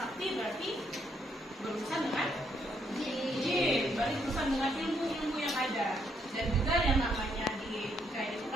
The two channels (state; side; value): normal; both; correlation 0.73